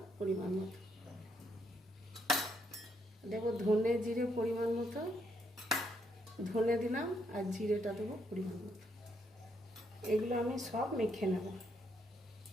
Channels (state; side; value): normal; both; correlation 0.75